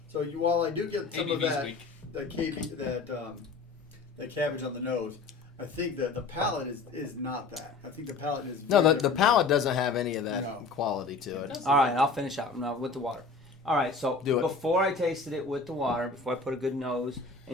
While I do get some of ABV's that, weak. that cabbage on the nose, I think that the palate is not that. I think the palate is No, very the different. palate doesn't have any of that No. quality to it. doesn't. All right, I'll finish out now with the water. All right, so Do it. before I tasted it with the water, before I put a good nose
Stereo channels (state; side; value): quieter; right; 4.2 dB